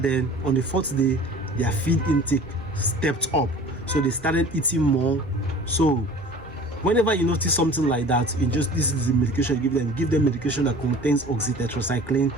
on the 4th day, their feed intake stepped up. So they started eating more. So whenever you notice something like that, this is the medication you give them medication that contains oxytetracycline.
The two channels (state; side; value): normal; both; correlation 0.44